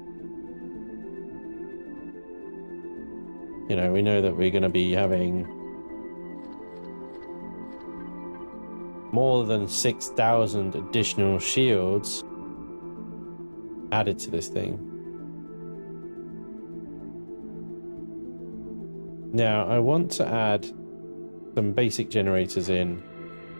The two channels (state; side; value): inverted; both; correlation -1.00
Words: you know, we know that we're going to be having more than 6,000 additional shields added to this thing. Now, I want to add some basic generators in